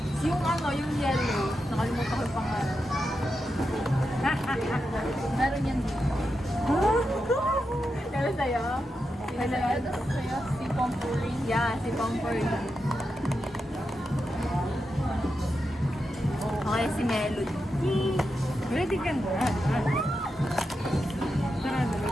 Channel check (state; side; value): normal; both; correlation 0.88